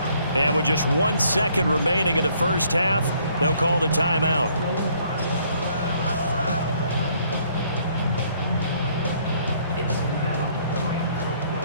And with just 1 second remaining in the first half, they'll call the timeout.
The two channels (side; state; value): both; inverted; correlation -0.65